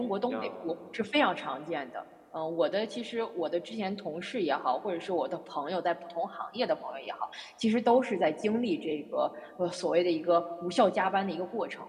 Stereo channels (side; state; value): both; identical; correlation 1.00